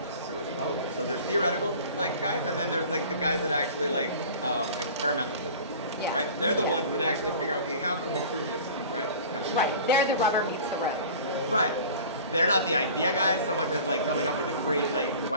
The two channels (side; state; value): both; inverted; correlation -0.42